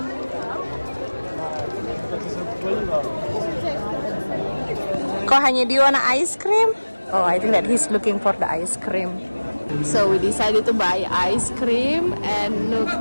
Kok hanya do you want ice cream? Oh, I think that he's looking for the ice cream. So we decided to buy ice cream and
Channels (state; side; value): inverted; both; correlation -1.00